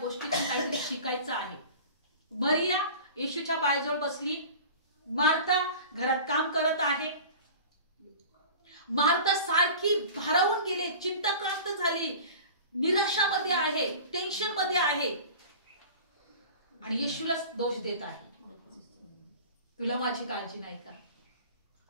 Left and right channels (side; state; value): both; inverted; correlation -0.38